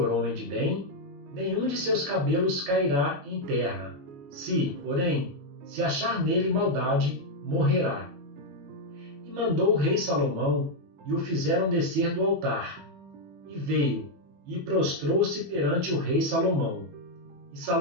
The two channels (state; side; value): late; left; 21 ms